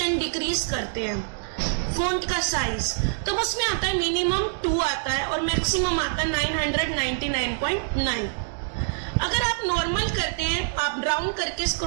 डिक्रीज करते हैं फॉन्ट का साइज, तो उसमें आता है मिनिमम 2 आता है और मैक्सिमम आता है 999.9। अगर आप नॉर्मल करते हैं, आप राउंड करके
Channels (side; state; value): left; silent; digital silence